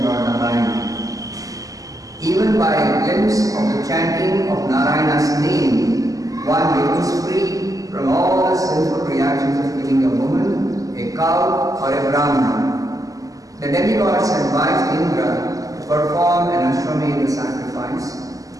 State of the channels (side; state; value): left; late; 0.17 ms